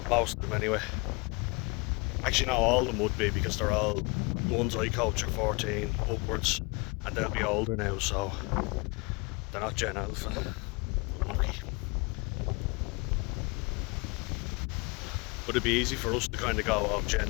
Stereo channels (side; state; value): right; quieter; 29.1 dB